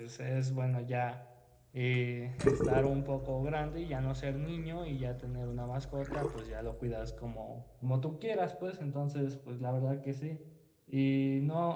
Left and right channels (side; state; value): both; identical; correlation 1.00